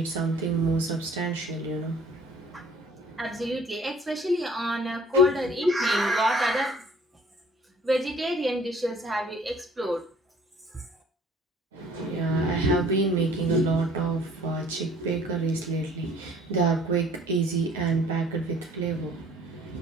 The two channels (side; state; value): both; normal; correlation 0.54